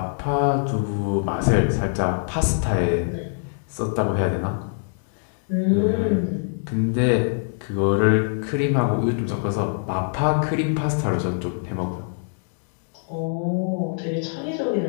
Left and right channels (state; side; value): silent; right; digital silence